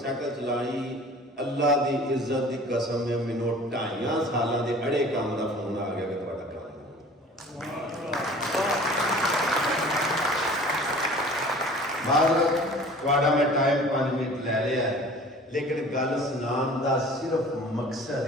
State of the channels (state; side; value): normal; both; correlation 0.45